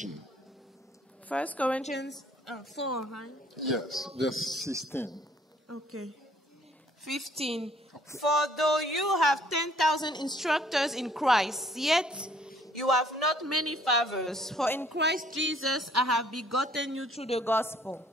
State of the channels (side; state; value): both; normal; correlation 0.60